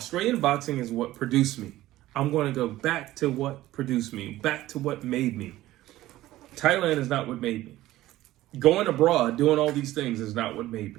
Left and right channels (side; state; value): left; quieter; 15.7 dB